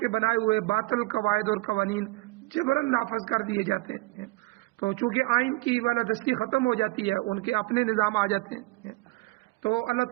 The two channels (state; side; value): quieter; left; 22.0 dB